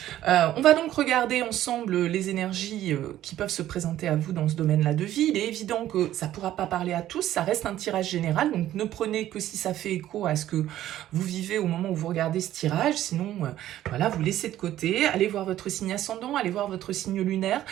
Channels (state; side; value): quieter; left; 13.0 dB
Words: On va donc regarder ensemble les énergies qui peuvent se présenter à vous dans ce domaine-là de vie. Il est évident que ça ne pourra pas parler à tous, ça reste un tirage général, donc ne prenez que si ça fait écho à ce que vous vivez au moment où vous regardez ce tirage, sinon voilà, vous laissez de côté, allez voir votre signe ascendant, allez voir votre signe lunaire,